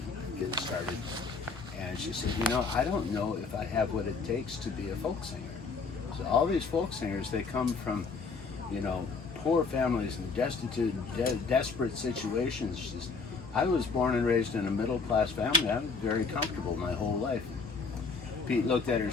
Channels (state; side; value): quieter; right; 4.7 dB